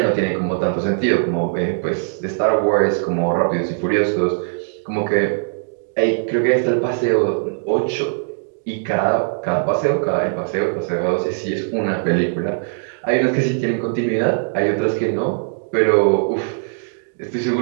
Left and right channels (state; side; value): silent; left; digital silence